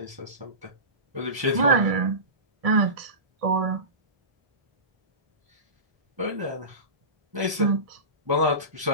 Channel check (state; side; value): late; left; 1.0 ms